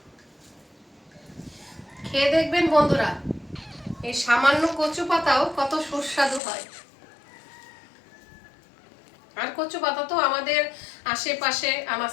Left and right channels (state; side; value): drops out; right; at 6.4 s